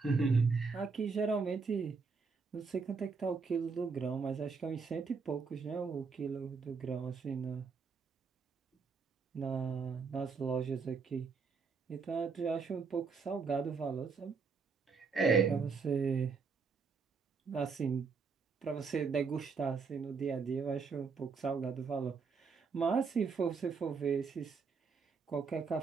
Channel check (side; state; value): left; quieter; 5.1 dB